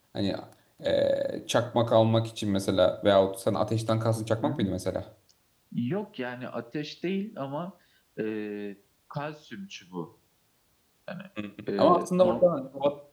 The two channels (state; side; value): identical; both; correlation 1.00